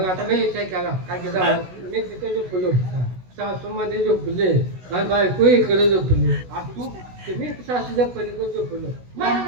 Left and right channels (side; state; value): left; late; 16 ms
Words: आता मी विचार केला काय केलं मी तिथे झोपलो सासू मध्ये झोपले आणि बायको इकडे झोपली आणि तू तुम्ही सासूच्या पलीकडे झोपलो